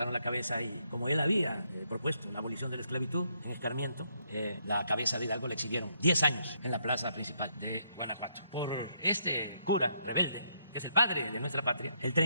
la cabeza y como él había propuesto la abolición de la esclavitud en Escarmiento, la cabeza de Hidalgo le exhibieron 10 años en la plaza principal de Guanajuato. Por este cura rebelde, que es el padre de nuestra patria, el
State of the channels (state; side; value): inverted; both; correlation -0.74